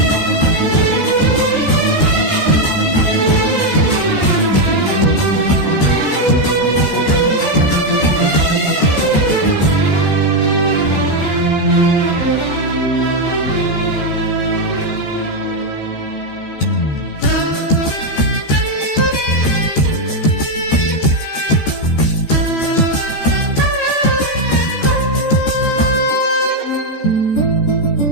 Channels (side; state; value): right; late; 14 ms